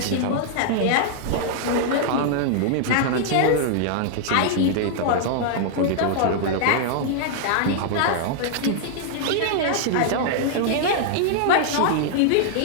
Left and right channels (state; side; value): different; both; correlation -0.01